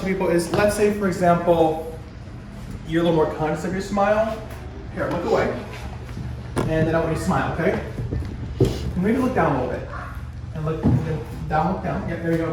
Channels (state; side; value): identical; both; correlation 1.00